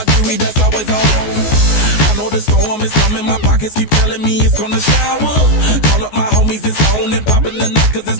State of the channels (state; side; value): late; right; 14 ms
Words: jewelry that's always on. I know the storm is coming. My pockets keep telling me it's gonna shower. Call up my homies, it's on and popping the night cause it's